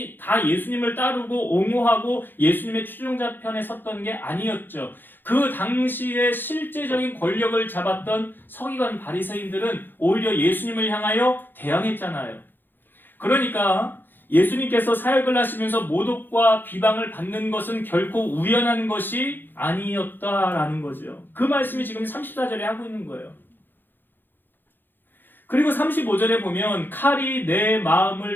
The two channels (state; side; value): late; right; 0.095 ms